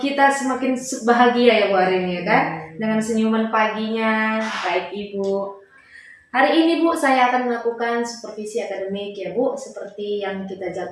semakin bahagia ya Bu hari ini ya kan? Dengan senyuman paginya, baik Ibu. Hari ini Bu, saya akan melakukan supervisi akademik ya Bu, seperti yang kita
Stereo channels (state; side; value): identical; both; correlation 1.00